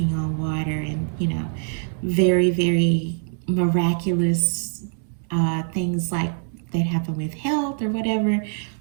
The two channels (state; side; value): silent; left; 57 dB below the other